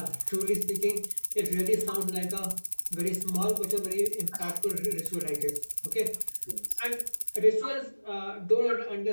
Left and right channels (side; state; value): both; inverted; correlation -1.00